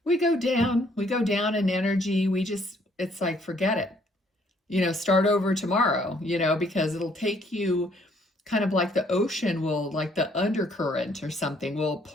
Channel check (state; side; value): normal; both; correlation 0.65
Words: we go down in energy. It's like, forget it, you know, start over tomorrow, you know, because it'll take you kind of like the ocean will, like the undercurrent or something will